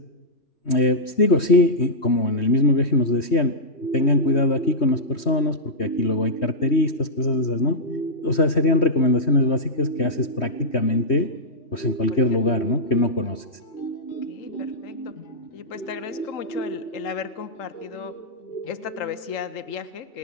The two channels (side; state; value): right; late; 3.2 ms